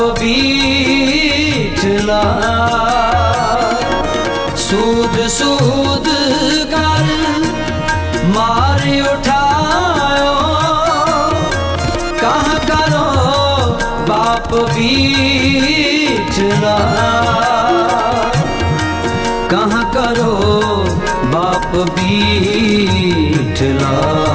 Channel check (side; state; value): both; identical; correlation 1.00